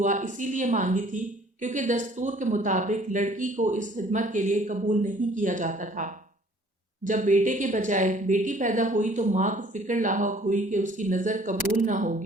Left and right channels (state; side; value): normal; both; correlation 0.56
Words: اسی لیے مانگی تھی کیونکہ دستور کے مطابق لڑکی کو اس خدمت کے لیے قبول نہیں کیا جاتا تھا۔ جب بیٹے کے بجائے بیٹی پیدا ہوئی تو ماں کو فکر لاحق ہوئی کہ اس کی نظر قبول نہ